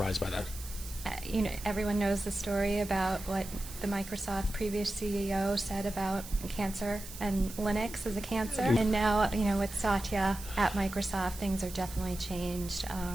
by that? Everyone knows the story about what the Microsoft previous CEO said about cancer and Linux as a cancer. And now, with Satya at Microsoft, things are definitely changed.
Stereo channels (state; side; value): noise; right; hiss, 13 dB below the sound